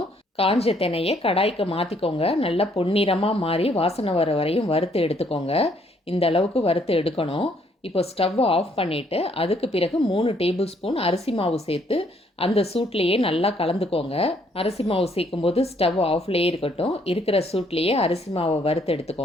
காஞ்ச தினையை கடாய்க்கு மாற்றிக்கோங்க. நல்லா பொன்னிறமாக மாறி வாசனை வர வரையும் வறுத்து எடுத்துக்கோங்க. இந்த அளவுக்கு வறுத்து எடுக்கணும். இப்போ ஸ்டவ்வை ஆஃப் பண்ணிவிட்டு அதுக்கு பிறகு 3 டேபிள் ஸ்பூன் அரிசி மாவு சேர்த்து அந்த சூட்லேயே நல்லா கலந்துக்கோங்க. அரிசி மாவு சேர்க்கும்போது ஸ்டவ் ஆஃப்லேயே இருக்கட்டும். இருக்கிற சூட்லேயே அரிசி மாவை வறுத்து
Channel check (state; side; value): normal; both; correlation 0.67